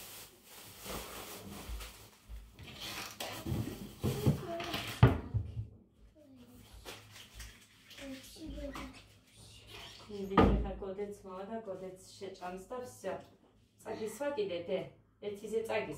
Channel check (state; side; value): identical; both; correlation 1.00